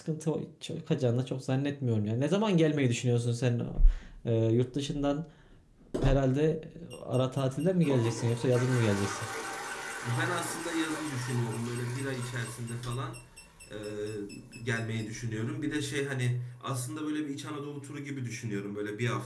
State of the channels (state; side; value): identical; both; correlation 1.00